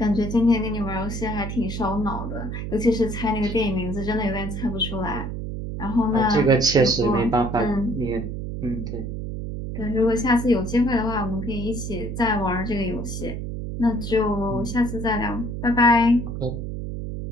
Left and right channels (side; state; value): right; noise; hum, 5 dB below the sound